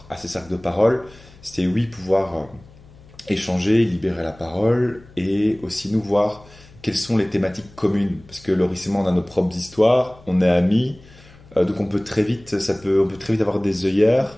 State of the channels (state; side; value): noise; left; hum, 24 dB below the sound